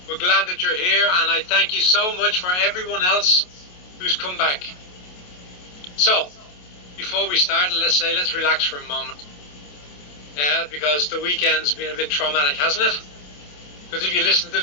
We're glad that you're here, and I thank you so much for everyone else who's come back. So, before we start, let's relax for a moment. Yeah, because the weekend's been a bit traumatic, hasn't it? Because if you listen to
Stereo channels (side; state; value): right; late; 27 ms